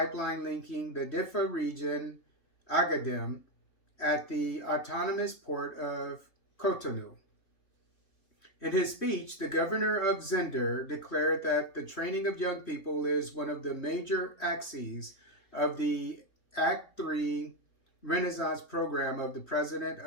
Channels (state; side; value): late; right; 3.1 ms